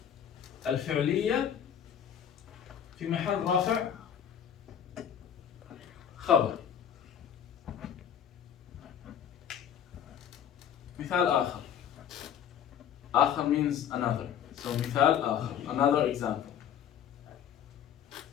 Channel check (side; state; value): right; quieter; 9.1 dB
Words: الفعلية في محل رافع خبر. مثال آخر. آخر means another. So مثال آخر. Another example.